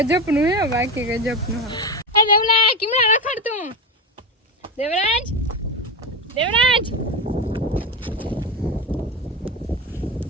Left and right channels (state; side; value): normal; both; correlation 0.17